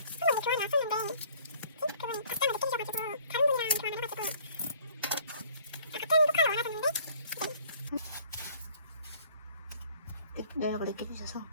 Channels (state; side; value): inverted; both; correlation -0.57